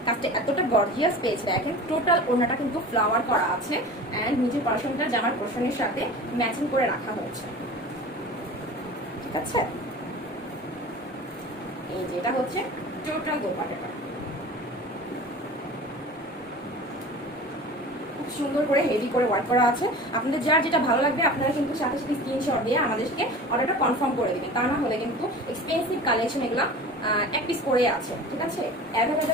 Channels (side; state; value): both; normal; correlation 0.37